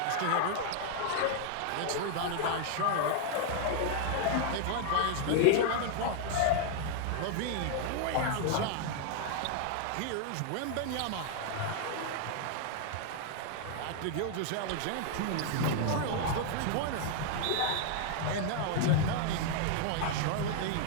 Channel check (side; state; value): both; different; correlation 0.00